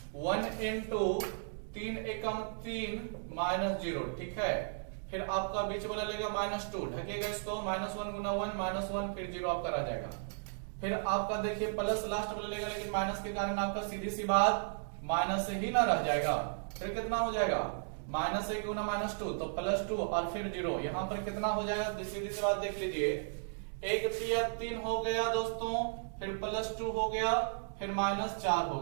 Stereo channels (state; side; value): silent; left; digital silence